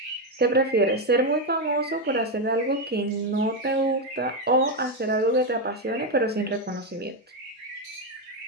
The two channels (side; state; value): both; normal; correlation 0.07